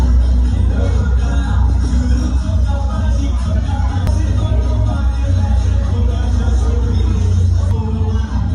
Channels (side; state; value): both; identical; correlation 1.00